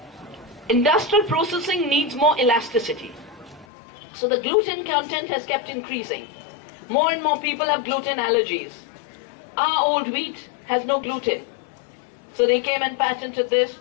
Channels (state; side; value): drops out; right; at 3.7 s